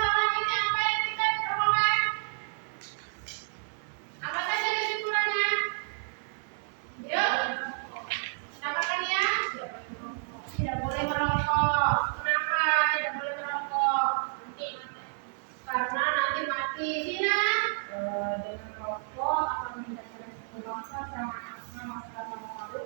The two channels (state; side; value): silent; left; digital silence